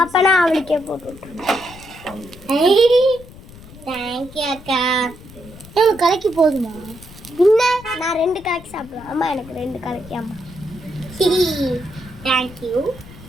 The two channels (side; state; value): left; noise; rumble, 19 dB below the sound